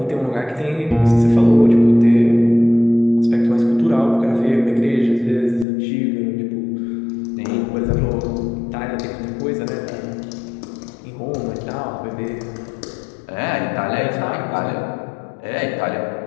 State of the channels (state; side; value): drops out; right; at 5.7 s